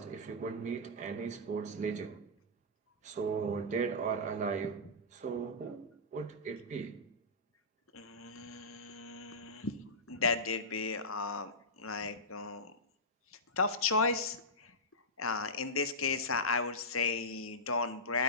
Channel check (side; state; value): both; normal; correlation -0.16